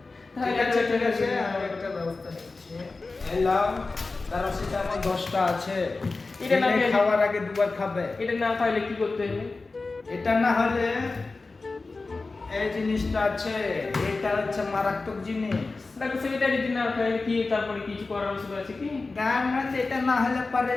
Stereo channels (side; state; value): right; quieter; 3.7 dB